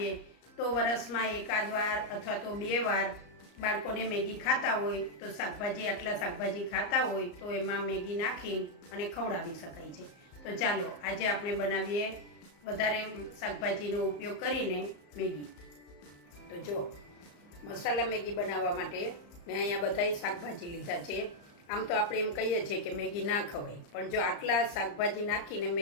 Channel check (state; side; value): late; right; 34 ms